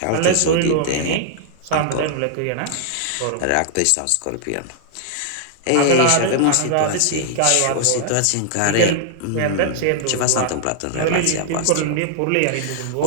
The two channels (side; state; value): both; different; correlation -0.01